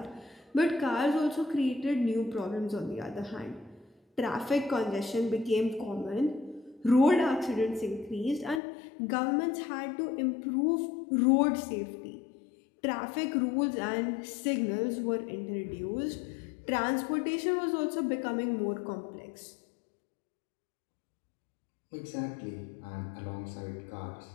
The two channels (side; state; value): right; drops out; at 8.6 s